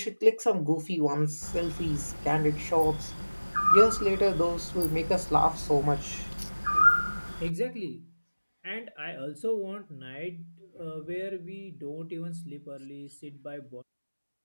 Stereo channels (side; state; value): both; inverted; correlation -1.00